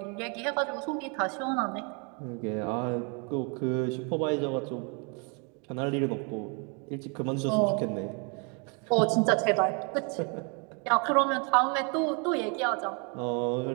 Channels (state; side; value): quieter; left; 35.1 dB